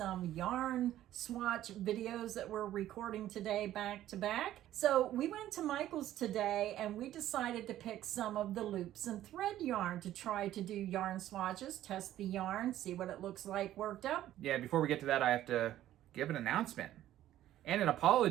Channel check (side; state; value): left; quieter; 13.1 dB